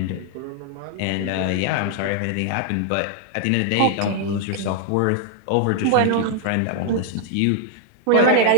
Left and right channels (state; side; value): different; both; correlation -0.01